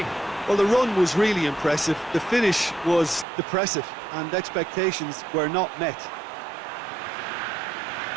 Well, the run was really impressive. The finish was depressive, and expectations were not met.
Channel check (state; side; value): drops out; left; at 3.2 s